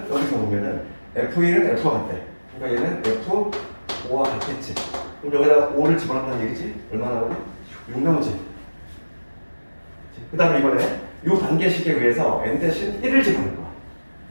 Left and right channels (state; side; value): inverted; both; correlation -1.00